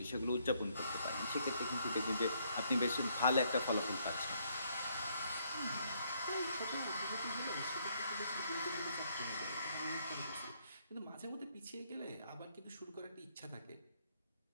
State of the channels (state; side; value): inverted; both; correlation -0.70